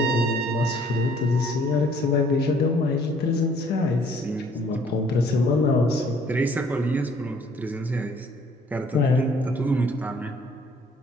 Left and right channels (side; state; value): both; normal; correlation 0.59